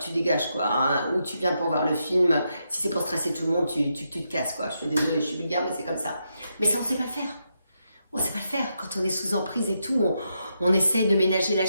dégages, quoi, hein, ou tu viens pour voir le film, si c'est pour stresser tout le monde, tu te casses, quoi. Je suis désolée, je suis vulgaire, mais c'est comme ça. Mais ça, on sait pas le faire. On sait pas le faire. Quand on est sous emprise et tout, on essaye de ménager la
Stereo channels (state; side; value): inverted; both; correlation -0.82